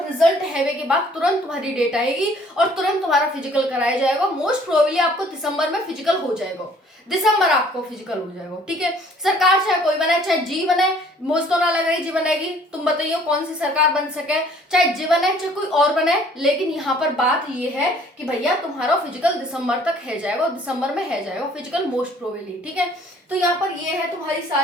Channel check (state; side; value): normal; both; correlation 0.57